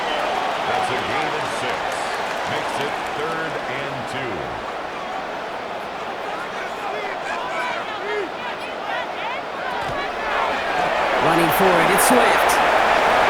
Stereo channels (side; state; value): both; identical; correlation 1.00